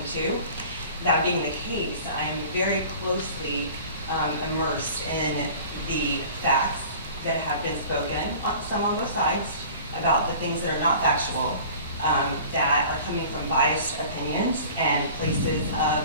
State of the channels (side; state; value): both; inverted; correlation -0.43